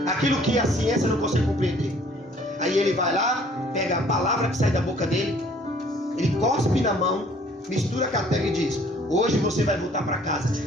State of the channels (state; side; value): normal; both; correlation 0.57